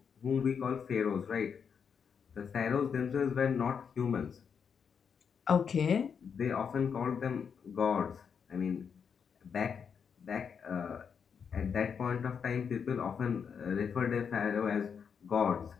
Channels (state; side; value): quieter; right; 6.7 dB